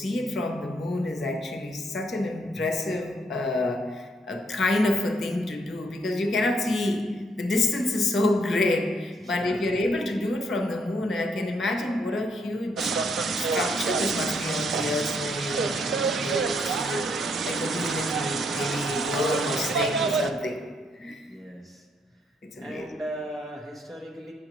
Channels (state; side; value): normal; both; correlation 0.72